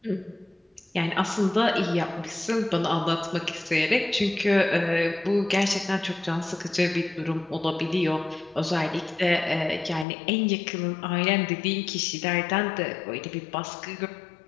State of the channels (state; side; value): drops out; right; at 10.1 s